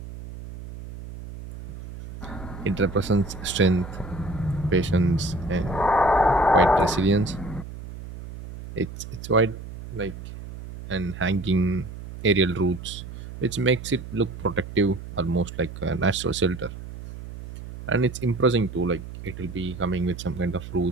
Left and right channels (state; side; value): noise; right; hum, 12 dB below the sound